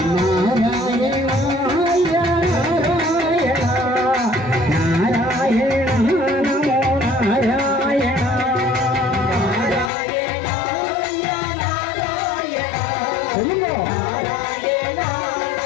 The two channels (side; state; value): right; drops out; at 9.9 s